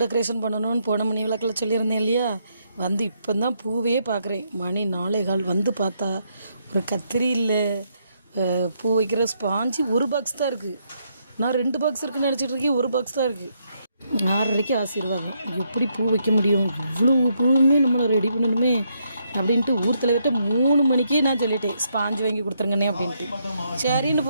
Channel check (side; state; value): both; inverted; correlation -0.77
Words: டெக்கரேஷன் பண்ணணும்னு போன மணி விளக்கில் சொல்லியிருந்தேன் இல்லையா, வந்து இப்போ தான் பூவே பார்க்குறேன். மணி 4:15 வந்து பார்த்தா ஒரு கத்திரி இல்லை, பூ வைக்கிற ஸ்பாஞ்சு ஒரு பாக்ஸ் தான் இருக்குது. நான் 2 பாக்ஸ் இருக்குன்னு நினச்சிட்டு இருக்கேன், ஒரு பாக்ஸ் தான் இருக்குது. 6:30க்கு ஆசீர்வாதம். எப்படி பூ வைக்க முடியும், இவ்வளோ பூவுமே நம்மளை ரெடி பண்ணணுமே அப்படின்ட்டு ஊர் தலைவர்கிட்ட 3 மணிக்கே நான் சொல்லிட்டேன், ஸ்பாஞ்சு வாங்கி கொடுத்துருங்கண்ணே அப்படின்ட்டு. சரின்னு